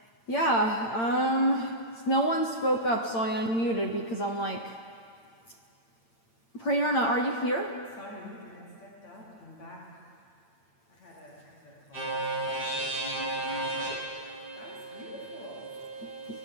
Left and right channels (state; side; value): late; right; 8.8 ms